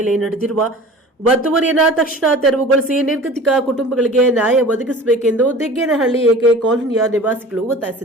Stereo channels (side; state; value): both; normal; correlation 0.41